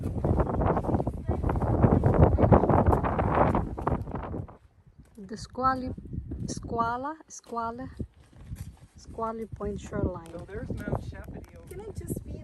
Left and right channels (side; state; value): both; identical; correlation 1.00